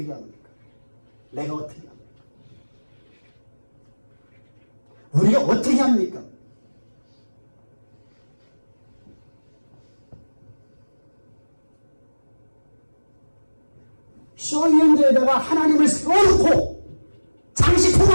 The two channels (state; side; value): inverted; both; correlation -1.00